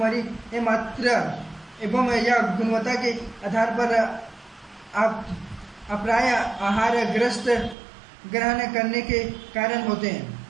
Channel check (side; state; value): left; drops out; at 7.8 s